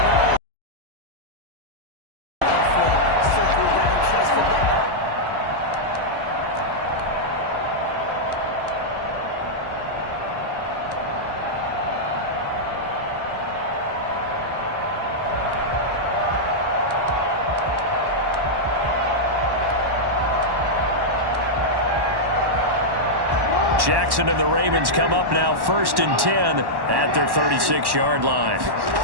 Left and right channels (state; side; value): late; left; 1.1 ms